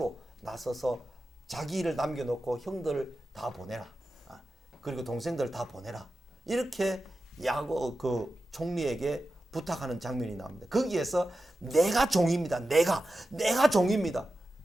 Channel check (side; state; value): both; normal; correlation 0.92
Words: 나서서 자기 일을 남겨놓고 형들을 다 보내라, 그리고 동생들 다 보내라, 이렇게 야곱 그 총리에게 부탁하는 장면이 나옵니다. 거기에서 내가 종입니다. 내가 종입니다.